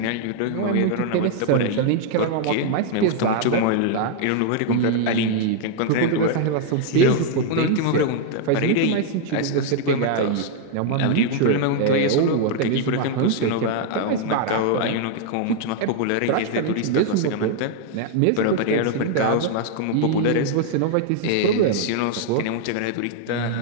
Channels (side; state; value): both; different; correlation 0.00